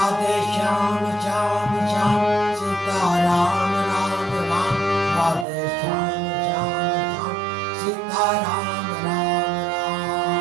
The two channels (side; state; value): left; drops out; at 5.5 s